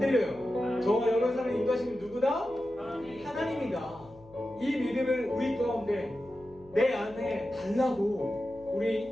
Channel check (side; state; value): left; noise; hum, 24 dB below the sound